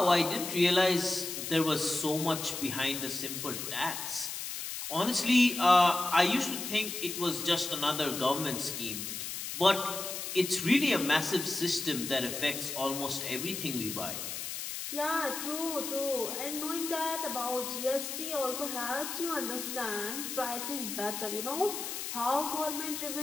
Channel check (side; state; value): left; noise; hiss, 6 dB below the sound